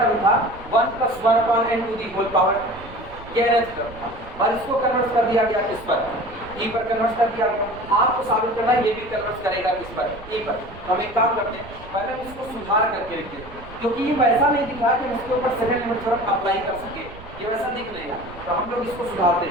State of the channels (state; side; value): noise; right; rumble, 18 dB below the sound